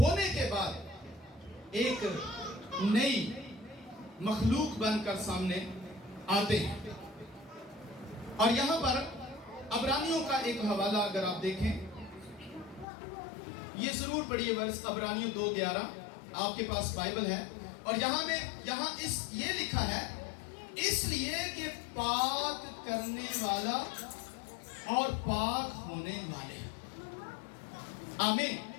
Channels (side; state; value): right; drops out; at 12.9 s